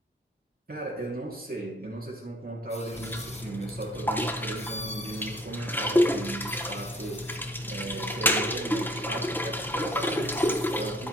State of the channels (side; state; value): both; normal; correlation 0.56